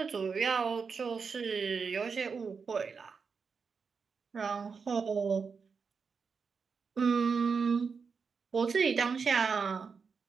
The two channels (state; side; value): quieter; left; 5.5 dB